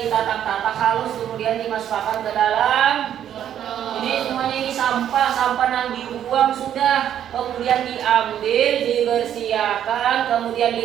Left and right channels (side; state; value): left; quieter; 10.2 dB